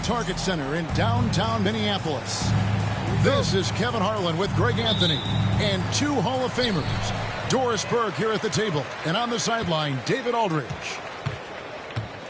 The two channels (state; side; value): identical; both; correlation 1.00